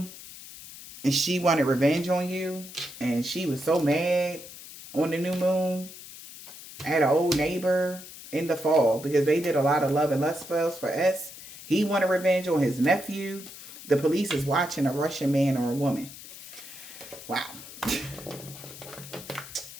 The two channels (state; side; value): noise; left; hiss, 15 dB below the sound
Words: And she wanted revenge on you. And she was so mad on the new moon at an old neighbor in the fall. Because they did a lot of love and lust spells for S. He wanted revenge on his nephew. The police is watching a Russian man or a woman. Wow.